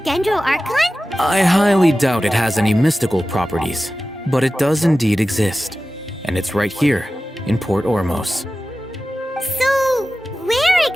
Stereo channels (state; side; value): normal; both; correlation 0.95